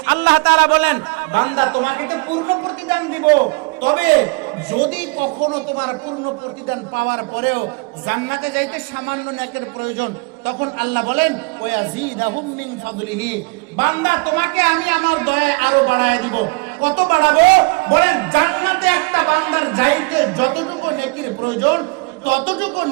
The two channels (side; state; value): left; quieter; 29.1 dB